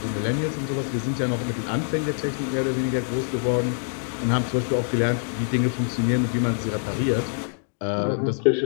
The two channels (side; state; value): right; silent; digital silence